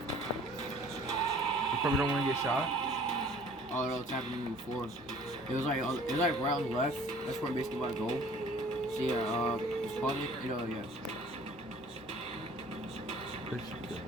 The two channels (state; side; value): normal; both; correlation 0.52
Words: You probably don't want to get shot. Oh no, it's happened to me before. It was like right on the left. That's where I'm basically about to go. So yeah, it's probably yeah.